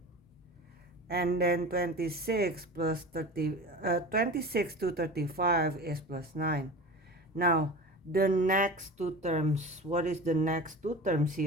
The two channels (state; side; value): normal; both; correlation 0.34